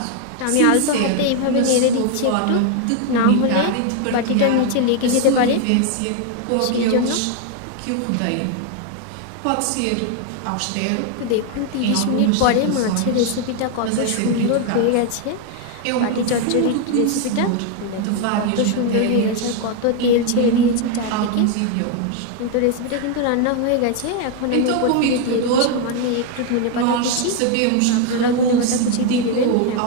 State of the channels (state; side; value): different; both; correlation 0.01